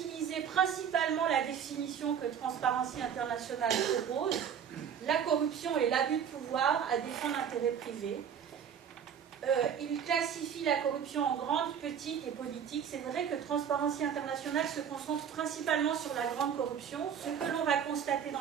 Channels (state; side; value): quieter; left; 8.1 dB